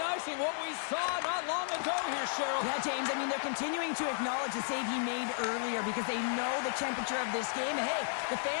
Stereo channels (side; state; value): right; silent; 55 dB below the other